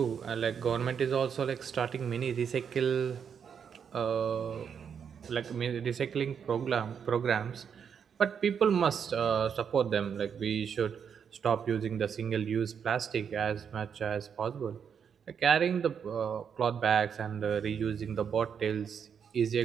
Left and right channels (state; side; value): quieter; left; 7.3 dB